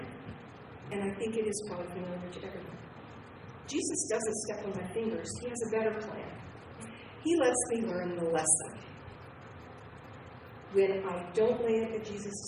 And I think it is probably familiar to everyone. Jesus doesn't step on my fingers. He has a better plan. He lets me learn the lesson. When I don't lay it at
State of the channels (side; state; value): both; identical; correlation 1.00